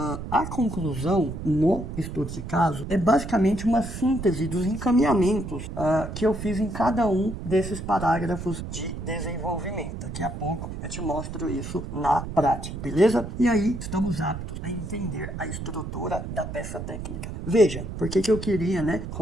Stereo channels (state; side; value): noise; right; rumble, 7 dB below the sound